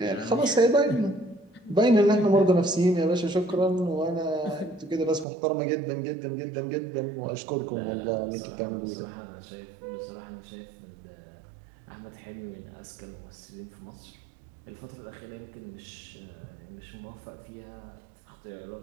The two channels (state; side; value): drops out; left; at 5.2 s